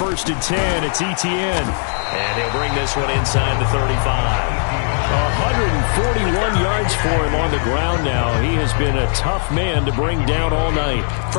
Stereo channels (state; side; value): silent; right; 67 dB below the other